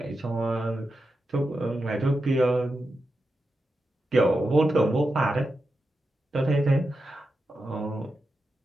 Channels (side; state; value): both; normal; correlation 0.89